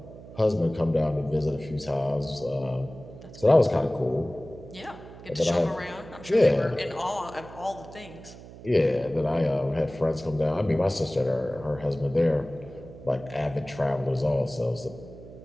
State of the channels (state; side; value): noise; right; hum, 17 dB below the sound